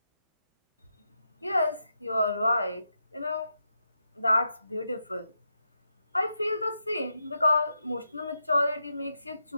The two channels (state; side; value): inverted; both; correlation -0.86